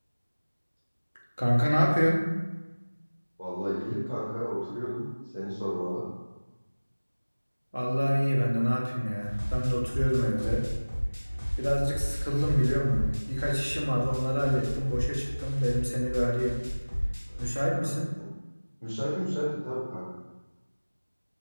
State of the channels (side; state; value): both; inverted; correlation -1.00